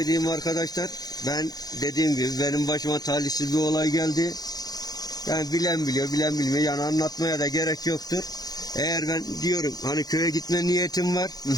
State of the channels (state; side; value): late; right; 0.19 ms